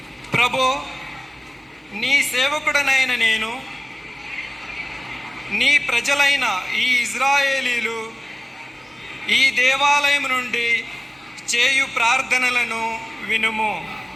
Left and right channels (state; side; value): normal; both; correlation 0.97